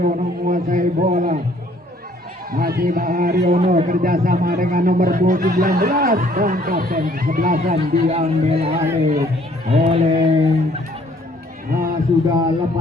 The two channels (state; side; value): normal; both; correlation 0.60